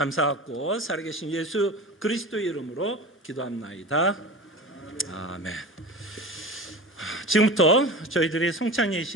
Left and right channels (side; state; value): both; normal; correlation 0.31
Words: 살아계신 예수 그리스도의 이름으로 기도합나이다. 아멘. 지금부터 저희들이 성찬